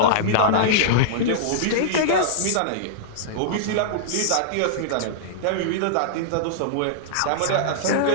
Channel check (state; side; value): different; both; correlation -0.02